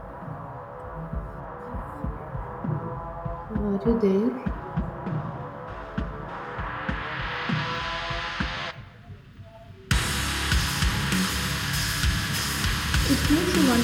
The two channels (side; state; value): both; identical; correlation 1.00